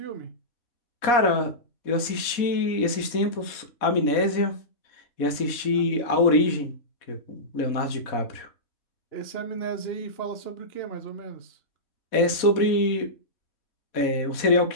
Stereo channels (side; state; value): right; late; 4.1 ms